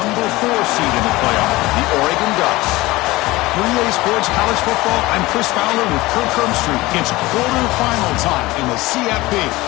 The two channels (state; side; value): quieter; right; 19.8 dB